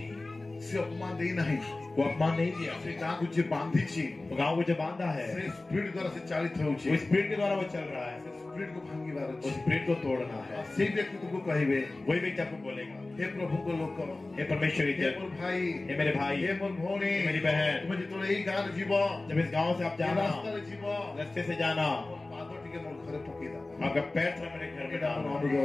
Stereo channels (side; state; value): right; quieter; 3.0 dB